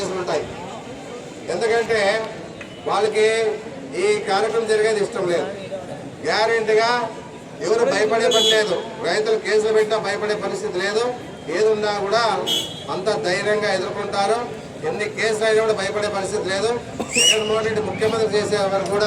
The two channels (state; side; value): identical; both; correlation 1.00